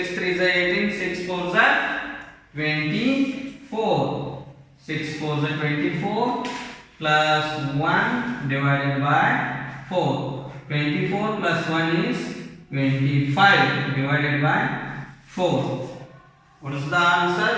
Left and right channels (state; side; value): identical; both; correlation 1.00